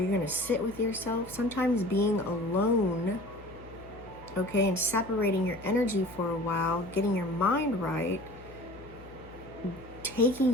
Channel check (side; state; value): left; noise; hum, 19 dB below the sound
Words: going to sit with yourself. Sometimes being alone, okay, and separating your energy for a while, getting your mind right, taking